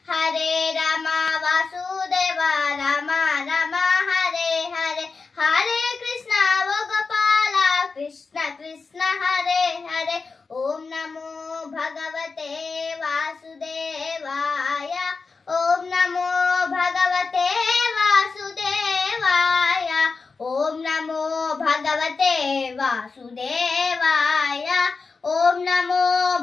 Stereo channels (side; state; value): right; quieter; 4.5 dB